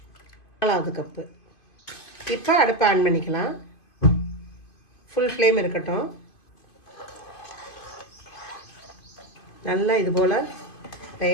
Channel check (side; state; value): right; late; 2.5 ms